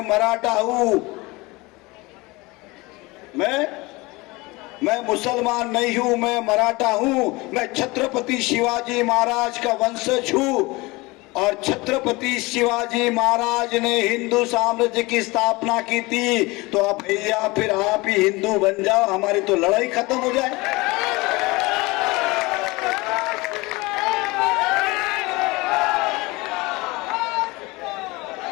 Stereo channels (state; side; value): quieter; right; 23.2 dB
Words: मराठा हूं। मैं मुसलमान नहीं हूं, मैं मराठा हूं। मैं छत्रपति शिवाजी महाराज का वंशज हूं और छत्रपति शिवाजी महाराज ने हिंदू साम्राज्य की स्थापना की थी। तो अब भैया फिर आप ही हिंदू बन जाओ, हमारी तो लड़ाई खत्म हो जाए।